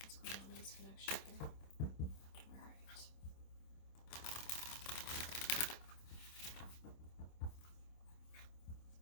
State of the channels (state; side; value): late; right; 26 ms